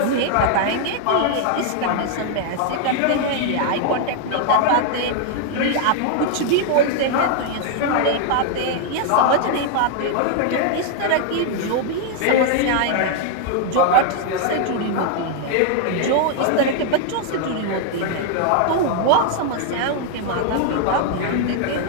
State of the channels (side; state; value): both; different; correlation 0.00